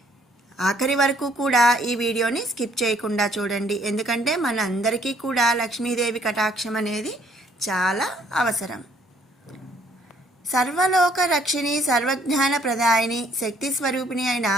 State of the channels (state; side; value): normal; both; correlation 0.63